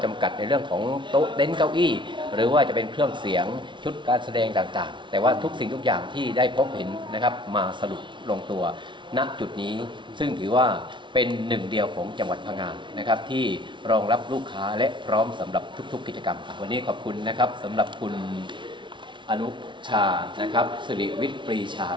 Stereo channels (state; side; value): late; left; 0.24 ms